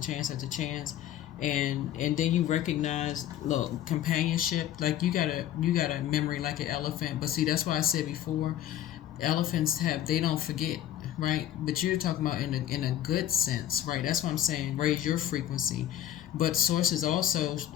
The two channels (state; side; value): quieter; right; 11.9 dB